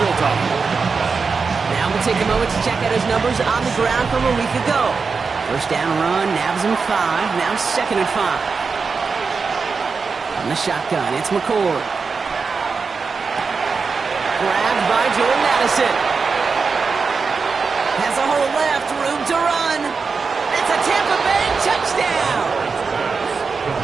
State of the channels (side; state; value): left; quieter; 4.9 dB